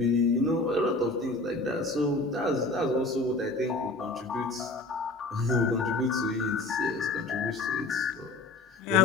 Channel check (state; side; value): quieter; right; 3.2 dB